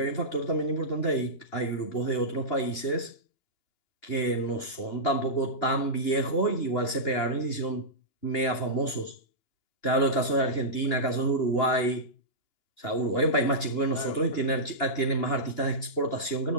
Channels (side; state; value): right; late; 2.9 ms